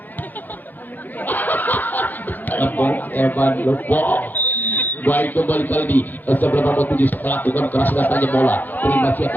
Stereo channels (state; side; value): late; right; 0.086 ms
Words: Evan Lupo baik kembali kali ini sebelum nomor 7 lakukan keras datanya bola terima